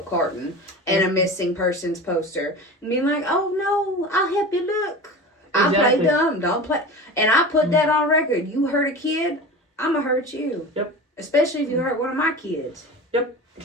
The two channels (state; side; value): normal; both; correlation 0.32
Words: carton and a missing persons poster. And being like, oh no, I'll help you look. I play dumb, don't play. And I put that on record. You hurt a kid, I'm going to hurt you. Yep. Especially if you hurt one of my kids. Yep.